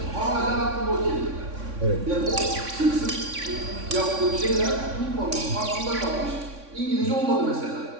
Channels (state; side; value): late; left; 3.6 ms